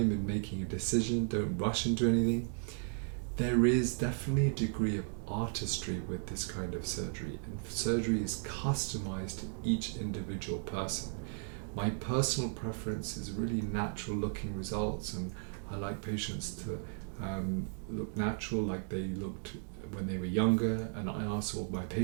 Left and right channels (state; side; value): silent; left; 54 dB below the other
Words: in making a decision, don't rush into anything. There is definitely a degree of artistry with this kind of surgery, and surgery is customized to each individual person. My personal preference is really natural looking results, and I like patients to look natural like they looked when they were younger, and I ask all my